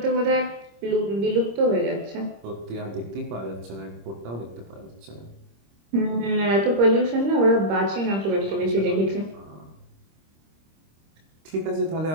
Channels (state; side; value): late; left; 26 ms